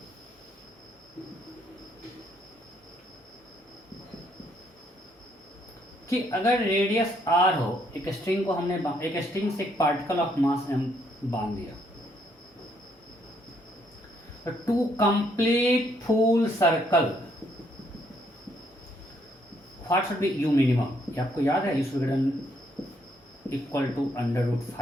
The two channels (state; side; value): normal; both; correlation 0.71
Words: कि अगर रेडियस r हो, एक स्ट्रिंग को हमने एक स्ट्रिंग से एक पार्टिकल ऑफ मास m बांध दिया, तो to complete full circle what should be u minimum? ये आपको याद है? u विघटन इक्वल टू